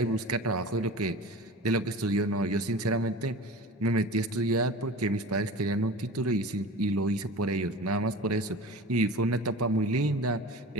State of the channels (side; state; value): both; normal; correlation 0.35